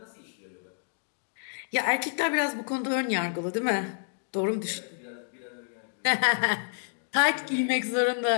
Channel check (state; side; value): silent; right; digital silence